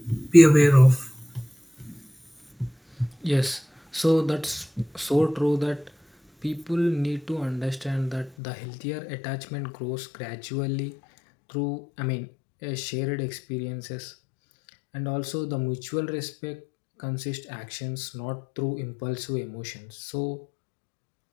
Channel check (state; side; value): drops out; right; at 8.3 s